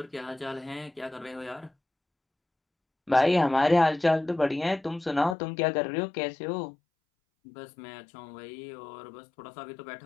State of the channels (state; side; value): drops out; right; at 5.4 s